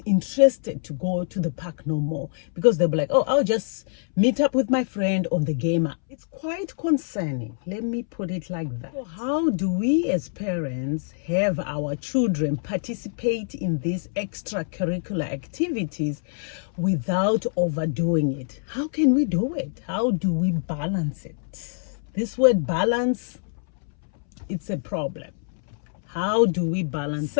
interested to go to the park no more because they'll be like, oh, I'll just meet up with my friend on the game. It's quite concerning. Let me put it like that. So how do we as parents have our children participate in these extracurricular activities without overdoing it? How can we do it? How do we balance it? This word balance, it's a problem. How do we balance?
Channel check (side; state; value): right; silent; 62 dB below the other